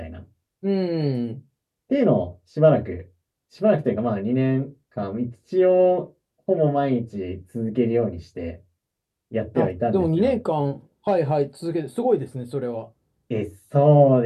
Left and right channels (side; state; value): both; identical; correlation 1.00